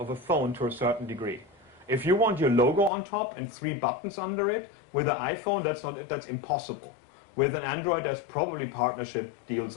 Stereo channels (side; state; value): right; drops out; at 2.9 s